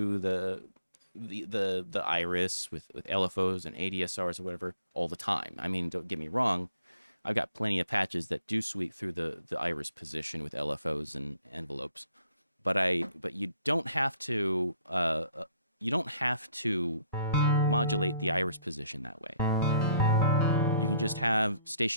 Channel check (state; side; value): inverted; both; correlation -0.64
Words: the iris with LFOs and ADSRs or whatever all the time. I mean, don't get me wrong, I've got plenty of patches that do sweep through the iris position with LFOs and envelopes, but you don't have to modulate the iris position that way. You can just have